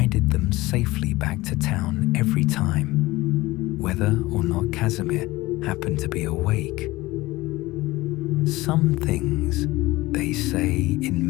them safely back to town every time, whether or not Casimir happened to be awake. Some things, they say in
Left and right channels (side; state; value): right; quieter; 19.5 dB